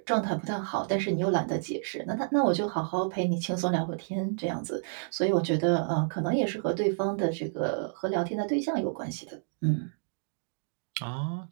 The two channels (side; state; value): left; silent; digital silence